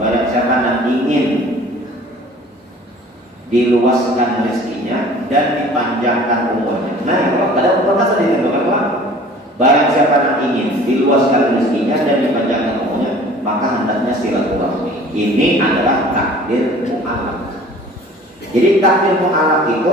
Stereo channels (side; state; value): both; normal; correlation 0.47